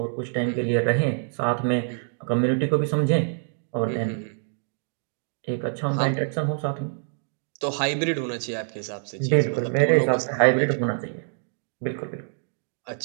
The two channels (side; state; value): left; silent; 61 dB below the other